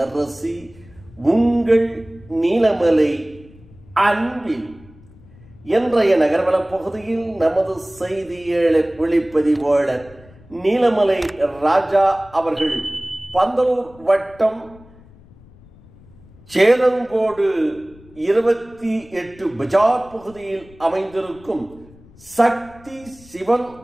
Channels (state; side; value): noise; left; rumble, 24 dB below the sound